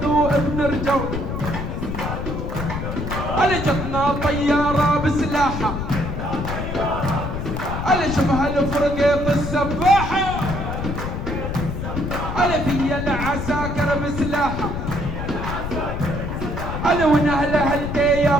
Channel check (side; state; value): left; noise; rumble, 4 dB below the sound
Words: وابن رجول علي جتنا طيارة بسلاحة علي شبه الفرقة السباحة علي في العساكر انا ونهله هلتي يا